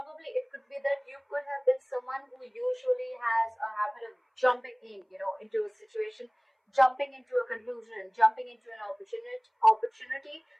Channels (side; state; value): both; identical; correlation 1.00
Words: it could be that you could have been someone who usually has a habit of jumping in, into a situation, jumping into a conclusion, jumping into an opportunity.